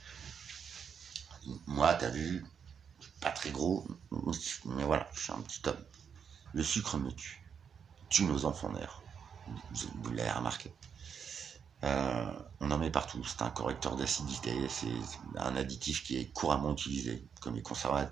Moi, t'as vu, pas très gros, mais voilà, je suis un petit homme. Le sucre me tue nos enfants d'ailleurs. Vous l'avez remarqué. On en met partout. C'est un correcteur d'acidité, c'est un additif qui est couramment utilisé, comme les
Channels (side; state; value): left; quieter; 7.1 dB